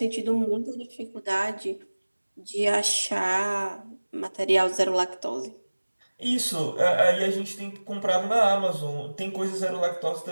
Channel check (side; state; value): both; inverted; correlation -1.00